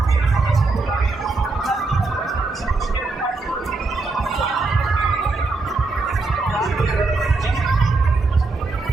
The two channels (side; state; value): left; quieter; 3.6 dB